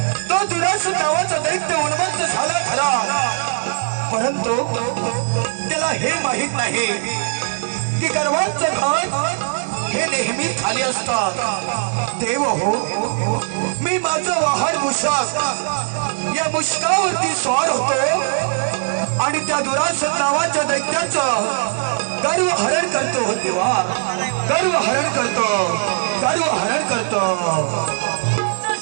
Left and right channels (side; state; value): left; silent; digital silence